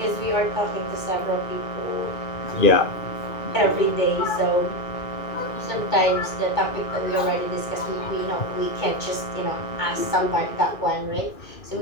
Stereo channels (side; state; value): right; late; 2.2 ms